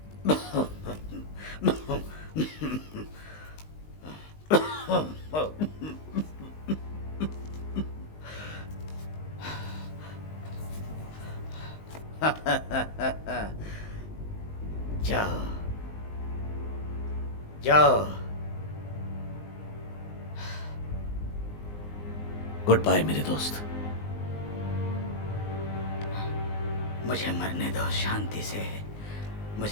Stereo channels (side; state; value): right; late; 19 ms